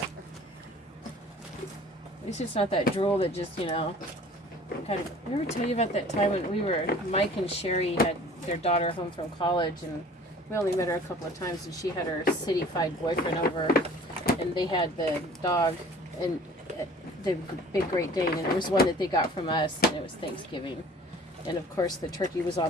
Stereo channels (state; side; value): normal; both; correlation 0.48